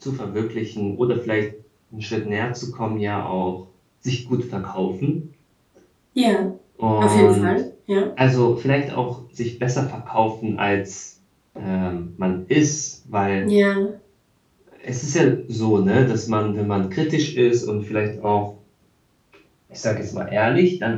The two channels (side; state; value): both; identical; correlation 1.00